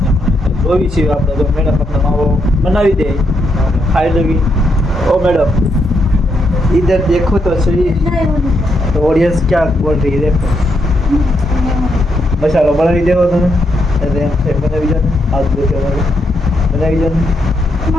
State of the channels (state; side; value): normal; both; correlation 0.79